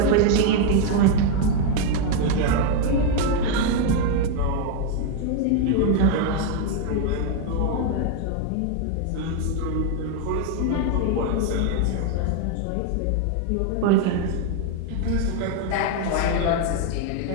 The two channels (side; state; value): both; different; correlation 0.01